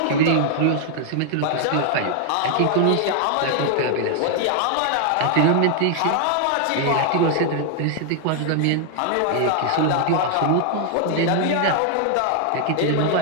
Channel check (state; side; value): different; both; correlation 0.00